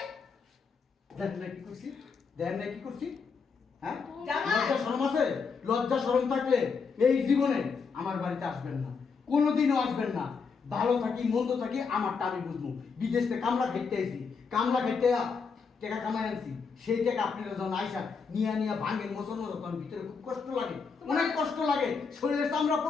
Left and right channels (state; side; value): quieter; right; 5.3 dB